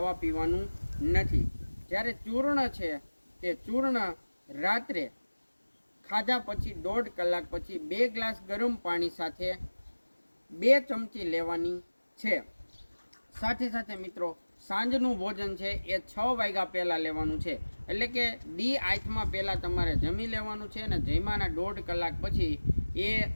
પીવાનું નથી. જ્યારે ચૂર્ણ છે તે ચૂર્ણ રાત્રે ખાધા પછી 1.5 કલાક પછી 2 ગ્લાસ ગરમ પાણી સાથે 2 ચમચી લેવાની છે. સાથે સાથે મિત્રો સાંજનું ભોજન છે એ 6 વાગ્યા પહેલાં લેવાનું છે. એટલે કે દી આઠમાં પહેલાં તમારે જમી લેવાનું છે અને જમ્યાના 1.5 કલાક પછી એ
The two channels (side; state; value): both; inverted; correlation -1.00